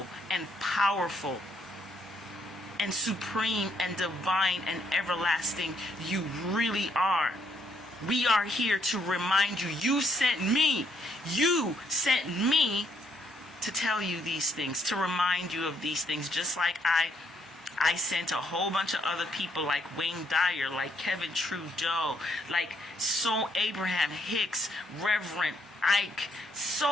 and powerful, and supreme, and divine, and everlasting you really are. We are here to remind you, you sent me to tell you these things, to remind you of these things, just like I sent a whole bunch of other people like Wayne Dyer, like Kevin Trudeau, like Abraham Hicks, Reverend Ike,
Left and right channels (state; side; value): normal; both; correlation 0.72